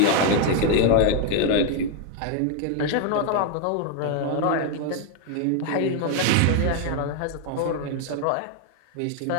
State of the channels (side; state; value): both; different; correlation 0.00